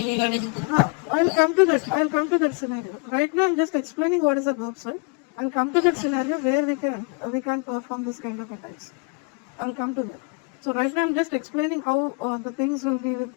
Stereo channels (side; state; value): right; quieter; 32.0 dB